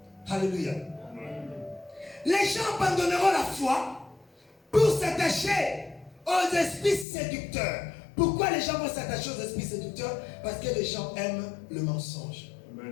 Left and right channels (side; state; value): right; drops out; at 7.1 s